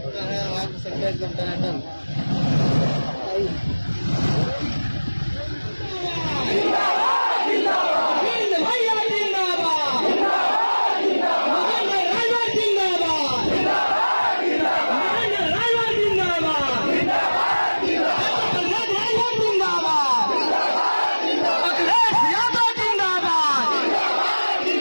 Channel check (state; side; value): inverted; both; correlation -1.00